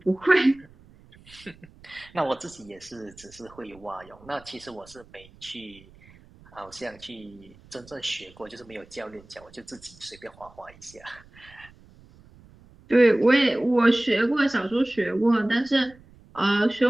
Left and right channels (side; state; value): right; noise; rumble, 25 dB below the sound